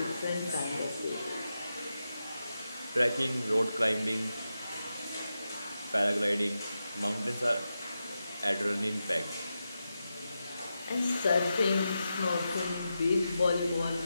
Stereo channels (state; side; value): inverted; both; correlation -0.89